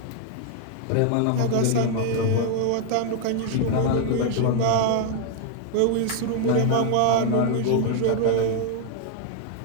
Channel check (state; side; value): different; both; correlation 0.00